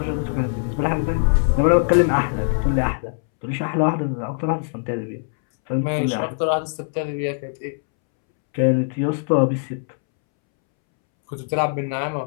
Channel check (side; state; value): right; silent; 64 dB below the other